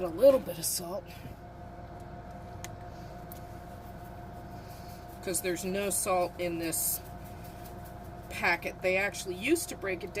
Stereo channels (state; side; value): identical; both; correlation 1.00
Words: a little bit of salt. Because there's no salt in this packet. They actually used to break it